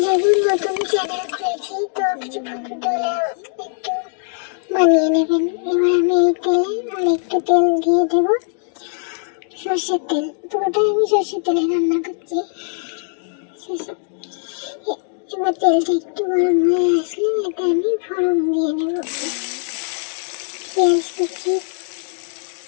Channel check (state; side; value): silent; right; 66 dB below the other